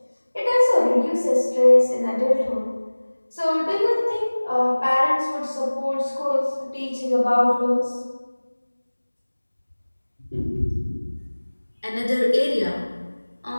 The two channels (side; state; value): both; inverted; correlation -1.00